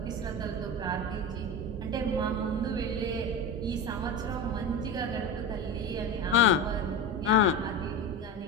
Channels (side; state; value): both; normal; correlation 0.24